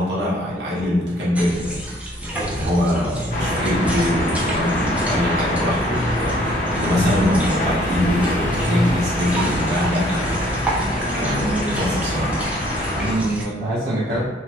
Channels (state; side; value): normal; both; correlation 0.61